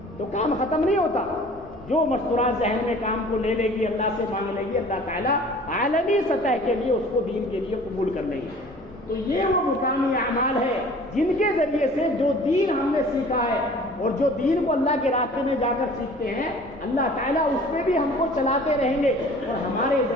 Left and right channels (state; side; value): noise; left; rumble, 24 dB below the sound